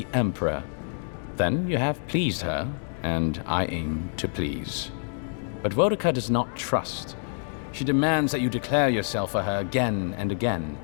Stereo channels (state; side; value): silent; right; 60 dB below the other